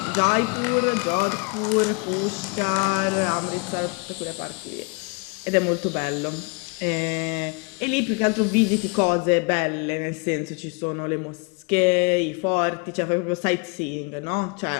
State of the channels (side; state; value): right; quieter; 31.6 dB